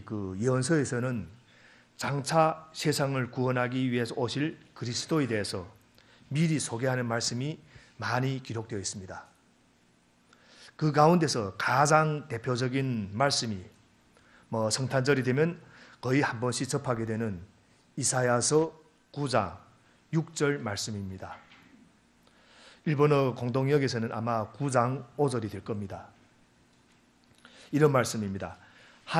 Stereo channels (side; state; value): both; identical; correlation 1.00